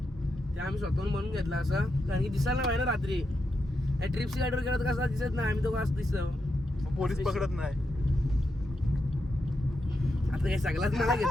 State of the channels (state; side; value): normal; both; correlation 0.85